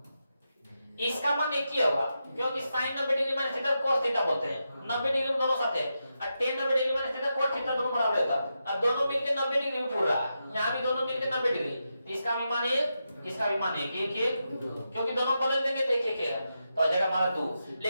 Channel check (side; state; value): both; inverted; correlation -0.87